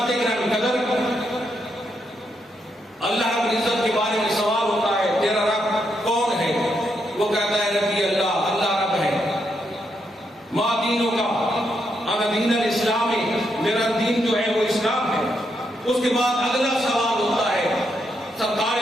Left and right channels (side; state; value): both; normal; correlation 0.80